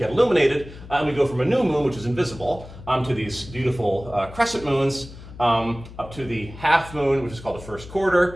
illuminated, and we go from a new moon, which is invisible, to these beautiful crescent moons, up to the half moon, which is called the first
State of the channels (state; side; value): noise; left; hum, 16 dB below the sound